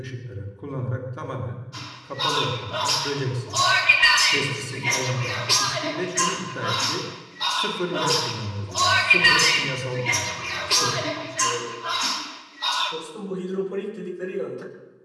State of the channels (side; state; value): both; identical; correlation 1.00